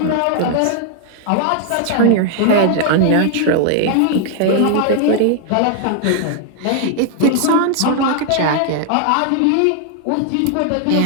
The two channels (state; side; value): different; both; correlation 0.00